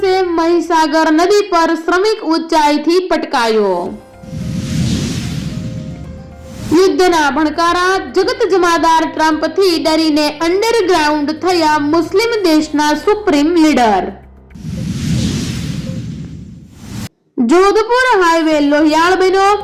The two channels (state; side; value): identical; both; correlation 1.00